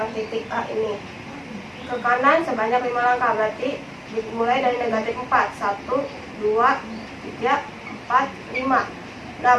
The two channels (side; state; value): both; identical; correlation 1.00